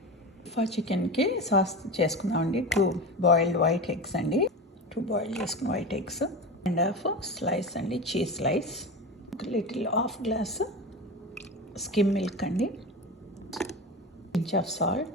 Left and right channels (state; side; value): normal; both; correlation 0.26